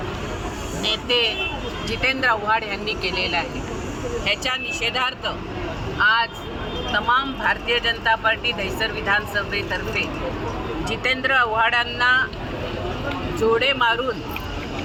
नेते जितेंद्र आव्हाड यांनी केलेला आहे। ह्याच्या निषेधार्थ आज तमाम भारतीय जनता पार्टी दहिसर विधानसभेतर्फे जितेंद्र आव्हाडांना जोडे मारून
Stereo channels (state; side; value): identical; both; correlation 1.00